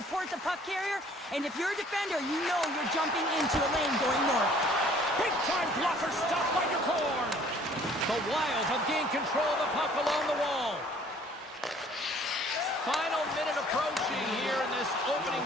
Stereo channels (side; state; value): both; normal; correlation 0.56